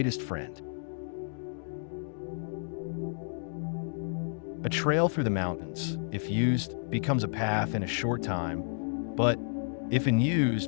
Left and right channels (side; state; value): right; silent; digital silence